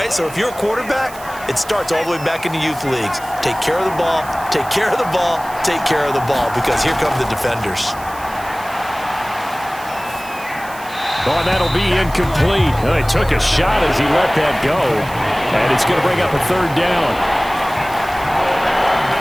so if you're a quarterback, it starts all the way back in the youth leagues. Take care of the ball, take care of the ball, take care of the ball, because here come the defenders. Oh, and that'll be incomplete. Oh, he took a shot as he let that go. And it's going to bring up a 3rd down.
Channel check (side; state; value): right; noise; hiss, 18 dB below the sound